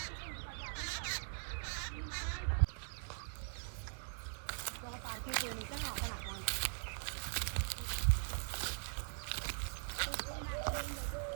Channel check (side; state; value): left; silent; digital silence